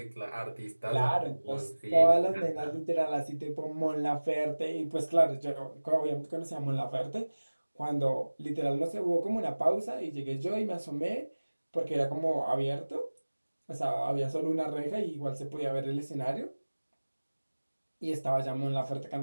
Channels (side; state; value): both; inverted; correlation -1.00